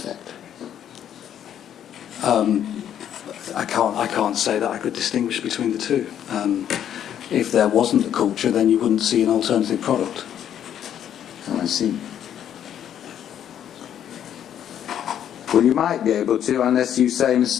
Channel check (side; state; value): right; quieter; 10.0 dB